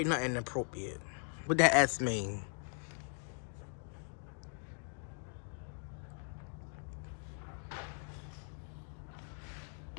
nothing inappropriate. What that ass mean?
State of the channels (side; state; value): right; silent; 51 dB below the other